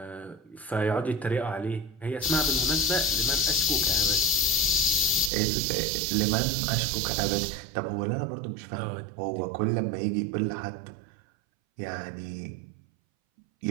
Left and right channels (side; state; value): left; drops out; at 5.3 s